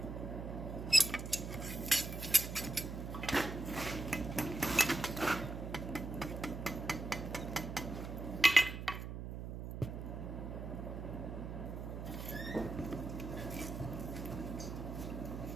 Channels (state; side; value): noise; right; hum, 6 dB below the sound